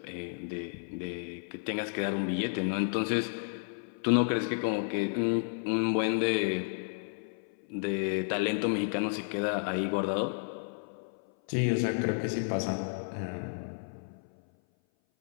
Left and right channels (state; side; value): silent; right; 56 dB below the other